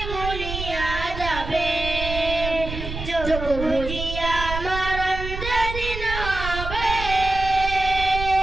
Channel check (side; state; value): right; noise; rumble, 7 dB below the sound